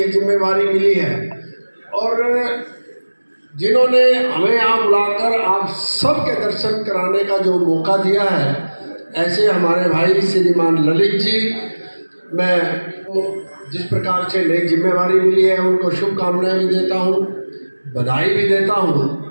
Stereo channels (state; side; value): inverted; both; correlation -1.00